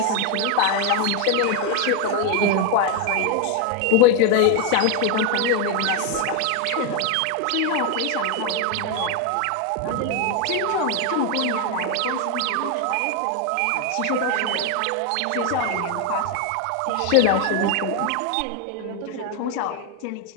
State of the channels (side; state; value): both; different; correlation 0.01